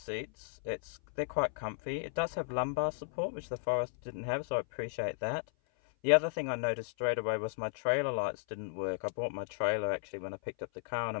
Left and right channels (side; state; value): right; silent; 55 dB below the other